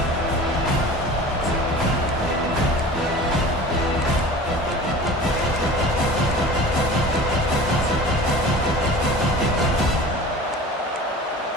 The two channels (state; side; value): normal; both; correlation 0.39